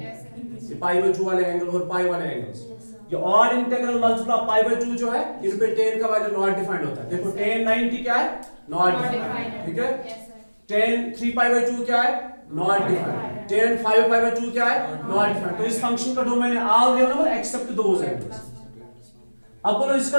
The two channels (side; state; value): both; inverted; correlation -1.00